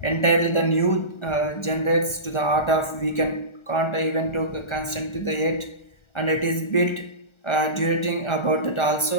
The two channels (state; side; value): late; right; 1.3 ms